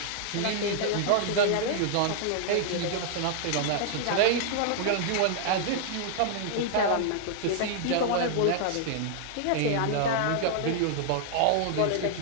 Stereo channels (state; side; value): different; both; correlation -0.01